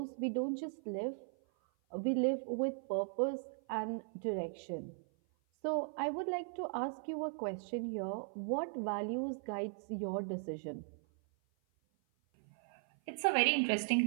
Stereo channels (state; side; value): silent; left; 52 dB below the other